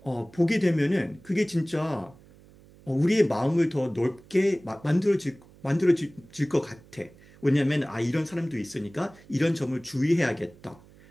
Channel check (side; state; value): right; noise; hum, 25 dB below the sound